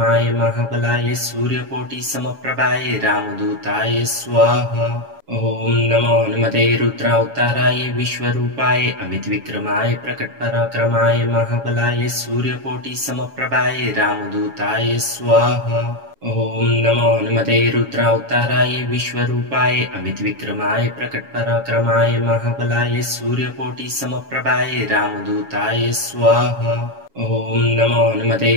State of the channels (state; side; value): late; left; 7.2 ms